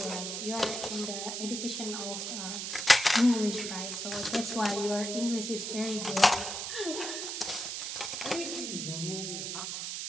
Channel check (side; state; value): right; noise; hiss, 4 dB below the sound